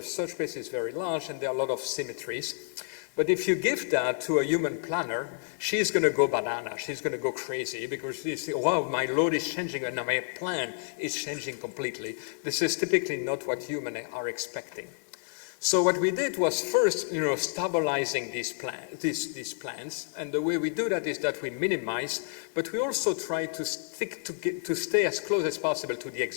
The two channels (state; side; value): silent; right; digital silence